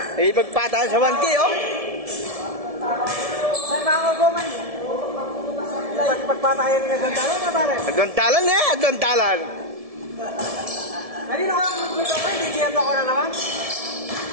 Ipagpatayan sa 1K, oh. Saan ba ako guman? Pagpatayan ng agantalan na pare? Agantalan eh, agantalan. Kanino ka mag-good ako, hindi kiyat ako na naman.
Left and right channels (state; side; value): late; left; 1.7 ms